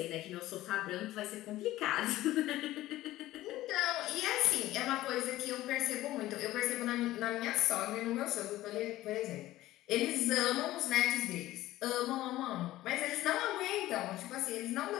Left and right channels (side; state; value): right; quieter; 15.8 dB